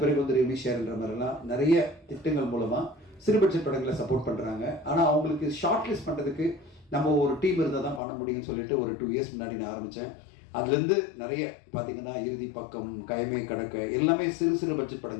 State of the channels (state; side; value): drops out; right; at 8.0 s